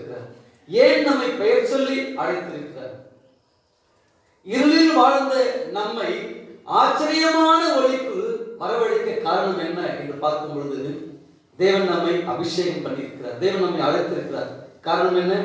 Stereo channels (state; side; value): identical; both; correlation 1.00